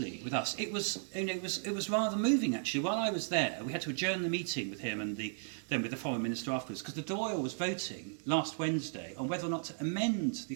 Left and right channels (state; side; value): silent; left; digital silence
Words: with us. It was rather moving, actually. While I was there, we had to adjourn the meeting with him and then with the foreign minister afterwards, because the Dáil was voting last Wednesday on whether or not to amend